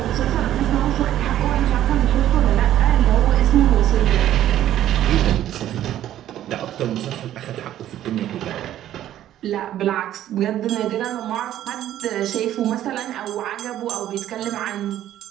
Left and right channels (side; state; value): left; quieter; 12.3 dB